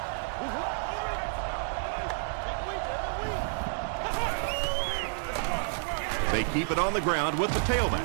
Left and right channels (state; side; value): silent; left; 58 dB below the other